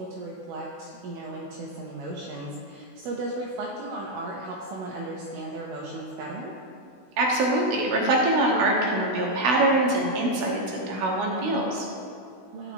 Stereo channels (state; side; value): late; left; 16 ms